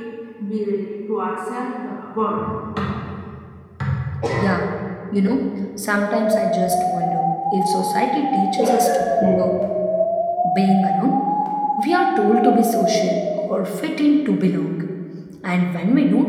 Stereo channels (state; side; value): identical; both; correlation 1.00